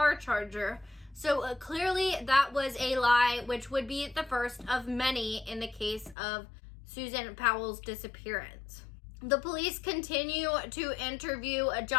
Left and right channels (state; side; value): drops out; right; at 6.2 s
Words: charger. So clearly that was a lie, which would be the first of many in the case of Susan Powell's disappearance. The police continue to interview